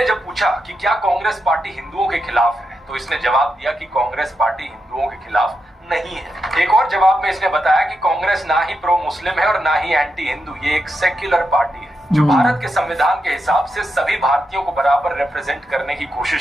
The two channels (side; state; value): both; normal; correlation 0.86